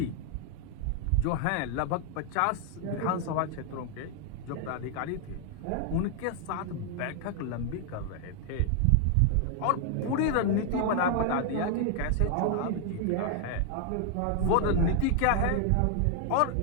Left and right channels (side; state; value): both; different; correlation 0.00